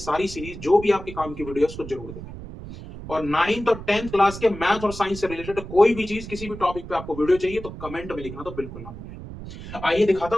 सीरीज जो भी आपके काम की वीडियो उसको जरूर देखें। और 9th और 10th क्लास के मैथ और साइंस से रिलेटेड कोई भी चीज, किसी भी टॉपिक पे आपको वीडियो चाहिए तो कमेंट में लिखना तो बिल्कुल ना भूलें। आइए दिखाता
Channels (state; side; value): noise; right; rumble, 12 dB below the sound